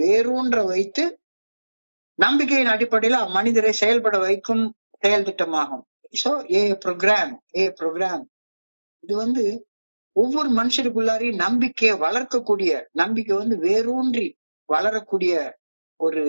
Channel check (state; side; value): inverted; both; correlation -1.00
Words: வேரூன்ற வைத்து நம்பிக்கையின் அடிப்படையில் அம்மனிதரை செயல்பட வைக்கும் செயல் திட்டமாகும். சோ ப்ரோக்ராம் இது வந்து ஒவ்வொரு மனுஷருக்குள்ளாரையும் நம்பிக்கையை வளர்க்கக்கூடிய, நம்பிக்கை வேரூன்றி வளரக்கூடிய ஒரு